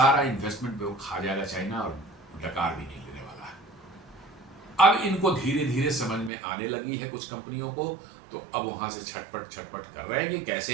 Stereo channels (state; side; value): drops out; left; at 6.3 s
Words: इन्वेस्टमेंट पे वो खा जाएगा चाइना, और डकार भी नहीं लेने वाला है। अब इनको धीरे धीरे समझ में आने लगी है कुछ कंपनियों को, तो अब वहां से छटपट कर रहे हैं कि